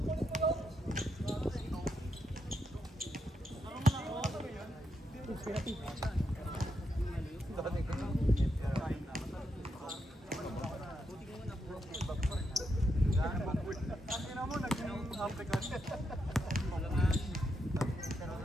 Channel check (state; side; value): normal; both; correlation 0.82